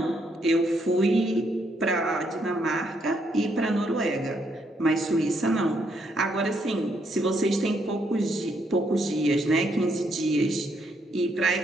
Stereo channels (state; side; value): normal; both; correlation 0.74